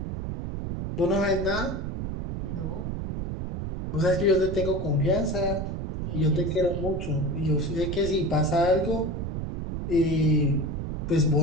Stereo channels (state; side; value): noise; right; rumble, 3 dB below the sound